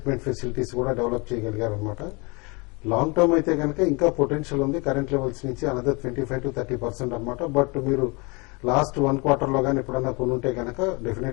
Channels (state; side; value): quieter; right; 28.7 dB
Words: ఫెసిలిటీస్ కూడా డెవలప్ చేయగలిగారు అనమాట. లాంగ్ టర్మ్ అయితే కనుక ఇంకా పొటెన్షియల్ ఉంది, కరెంట్ లెవెల్స్ నుంచి అనదర్ 25 to 30% అనమాట. బట్ మీరు లాస్ట్ 1 quarter లో కానీ ఎప్పుడన్నా కొనుంటే కనుక